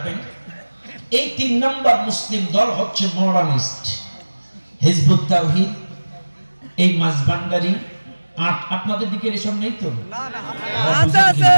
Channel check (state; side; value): inverted; both; correlation -1.00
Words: এই 3 নম্বর মুসলিম দল হচ্ছে মডার্নিস্ট, হিজবুত তাওহীদ, এই মাঝবান্ডারি। আপনাদের দিকে এসব নেই তো?